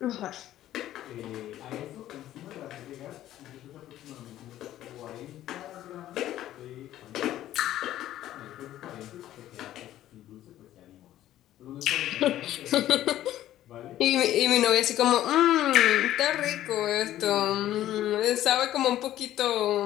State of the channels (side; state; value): right; quieter; 13.2 dB